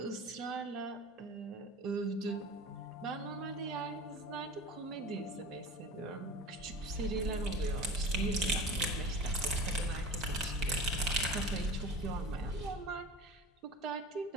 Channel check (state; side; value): normal; both; correlation 0.36